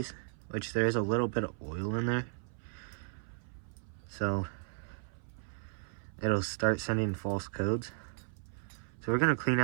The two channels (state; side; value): silent; left; 54 dB below the other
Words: which there is a little bit of oil in there. So it'll start sending false codes. So we're gonna clean